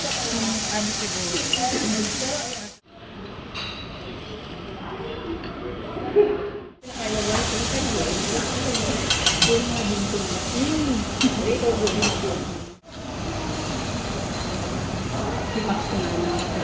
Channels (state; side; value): identical; both; correlation 1.00